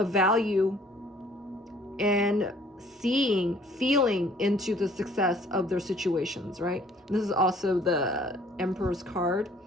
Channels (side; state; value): both; normal; correlation 0.57